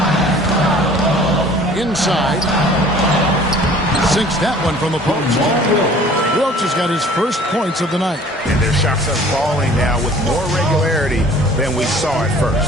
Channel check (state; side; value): normal; both; correlation 0.50